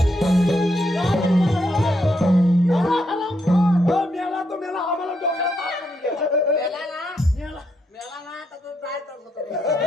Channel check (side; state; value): both; normal; correlation 0.79